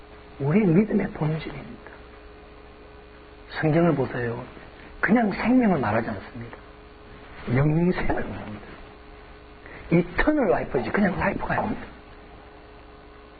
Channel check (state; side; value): identical; both; correlation 1.00